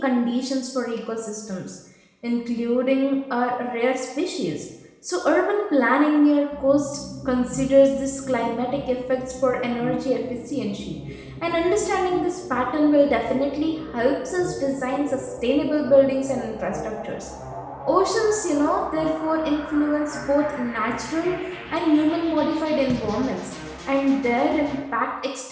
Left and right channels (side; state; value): both; identical; correlation 1.00